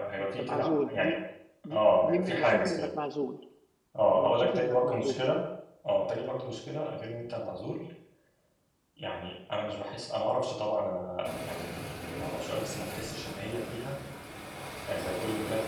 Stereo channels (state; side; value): identical; both; correlation 1.00